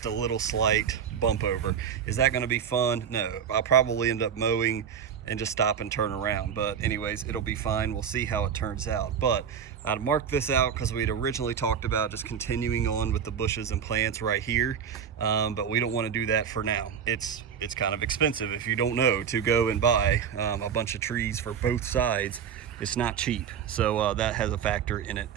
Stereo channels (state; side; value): quieter; left; 7.7 dB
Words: a little slight bump over. Is that gonna be fun? No, I'll probably end up mowing and just stop and turn around. But anyways, it'll be fine. We'll see how it turns out. But I'd marked this out because we'd originally talked about just continuing on with the bushes and plants right here. But we don't want to do that for now. It's kind of expensive, if you don't know, to go and buy a bunch of trees for both sides. It's not cheap. So that has a factor in it